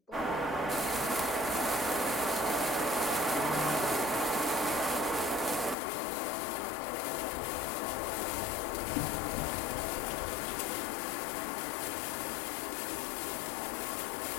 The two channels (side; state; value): right; drops out; at 5.8 s